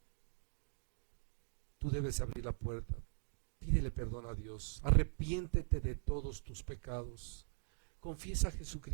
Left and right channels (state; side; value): silent; left; digital silence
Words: Tú debes abrir la puerta, pídele perdón a Dios, arrepiéntete de todos tus pecados, confiesa a